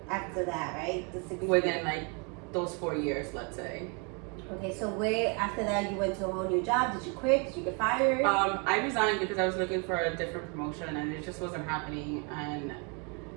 after that, right? The 6 within years. like those 4 years, let's say. Okay, so where after that you went to a whole new job? Did you quit? Did you get fired? I resigned because I was looking for a different promotion and it just wasn't happening. And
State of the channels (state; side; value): quieter; left; 34.5 dB